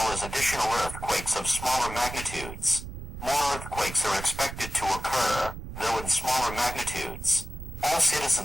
as additional earthquakes of smaller magnitudes. More earthquakes are expected to occur, though in smaller magnitudes. All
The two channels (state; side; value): noise; right; rumble, 10 dB below the sound